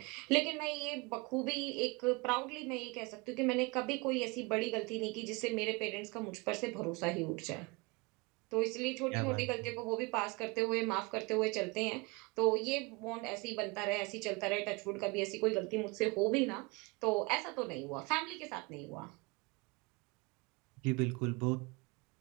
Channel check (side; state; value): left; quieter; 27.2 dB